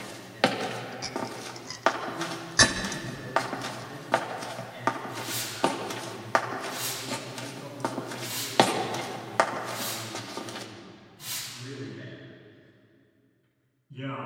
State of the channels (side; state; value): both; identical; correlation 1.00